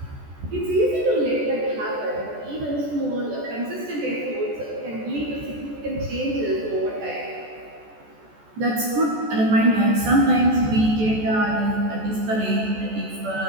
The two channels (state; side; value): late; left; 14 ms